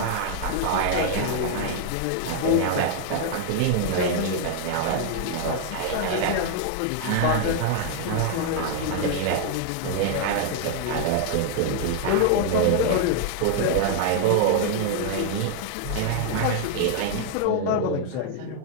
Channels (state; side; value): different; both; correlation 0.00